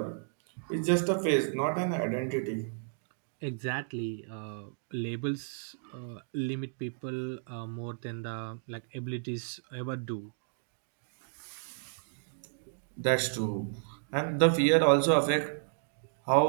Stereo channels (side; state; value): left; silent; digital silence